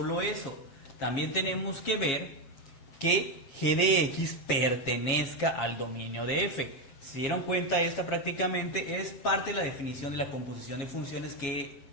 eso, también tenemos que ver que g de x pertenezca al dominio de f. Si se dieron cuenta, esta prácticamente es parte de la definición de la composición de funciones que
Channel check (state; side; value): late; right; 7.2 ms